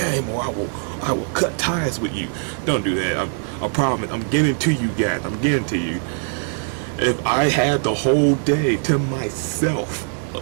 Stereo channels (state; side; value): silent; left; 56 dB below the other